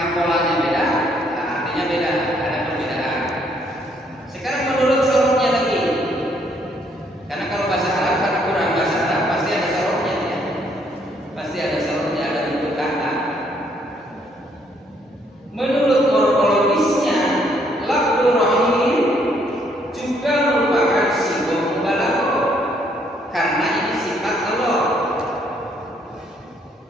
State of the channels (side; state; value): both; normal; correlation 0.68